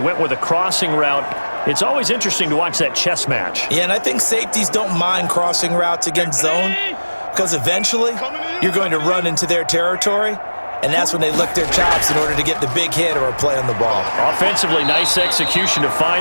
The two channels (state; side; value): inverted; both; correlation -1.00